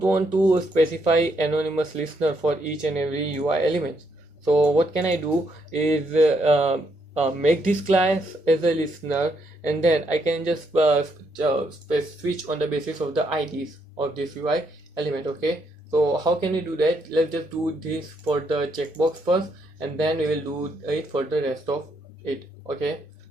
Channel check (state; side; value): normal; both; correlation 0.75